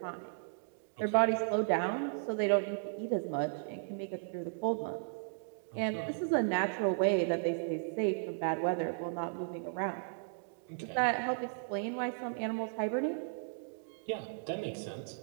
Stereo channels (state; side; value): silent; left; digital silence